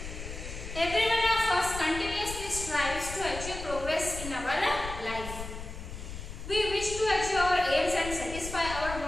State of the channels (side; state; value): left; noise; rumble, 9 dB below the sound